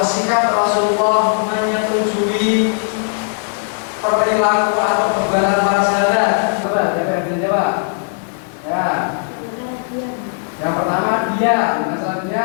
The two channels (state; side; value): silent; right; 65 dB below the other